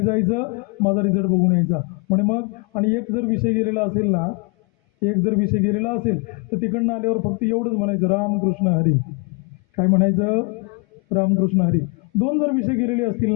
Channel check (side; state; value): right; quieter; 32.3 dB